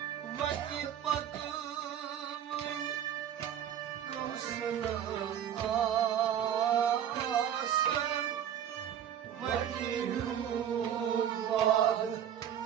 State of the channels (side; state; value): left; quieter; 9.8 dB